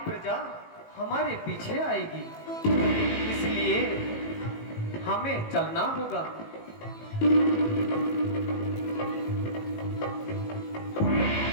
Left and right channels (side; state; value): right; late; 18 ms